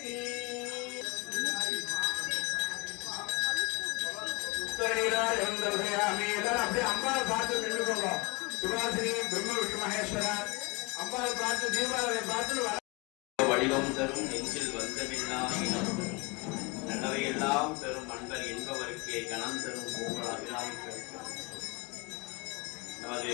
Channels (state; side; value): quieter; right; 27.4 dB